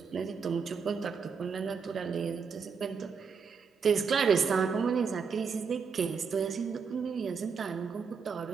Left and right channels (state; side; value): quieter; left; 5.8 dB